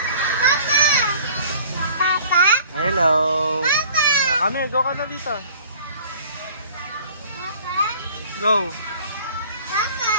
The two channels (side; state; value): both; inverted; correlation -0.50